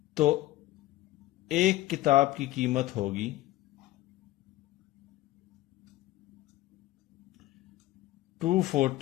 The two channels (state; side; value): quieter; right; 16.4 dB